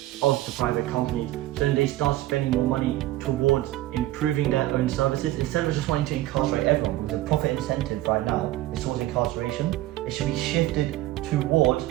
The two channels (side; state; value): left; quieter; 15.9 dB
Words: of the private companies, so then they start spending more money towards improving their own services instead of just wanting to incarcerate everyone. Because the profit incentive right now is towards incarceration. It should be shifted towards